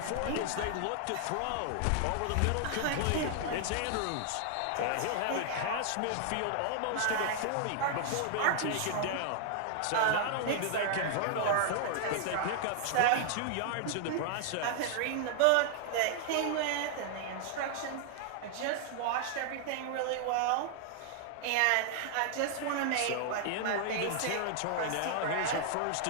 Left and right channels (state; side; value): different; both; correlation 0.00